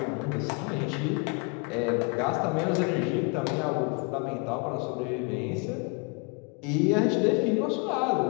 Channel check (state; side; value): quieter; right; 33.3 dB